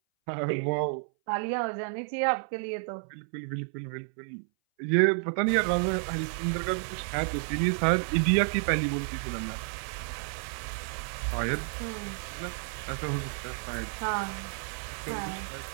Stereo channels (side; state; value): left; silent; 57 dB below the other